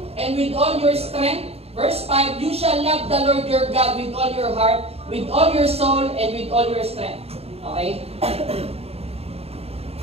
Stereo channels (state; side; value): late; left; 0.29 ms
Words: and with all your strength. Verse 5, you shall love the Lord your God with all your heart, with all your soul, and with all your strength. Okay?